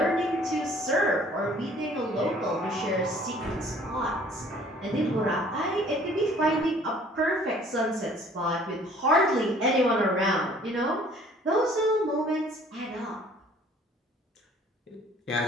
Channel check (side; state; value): both; normal; correlation 0.55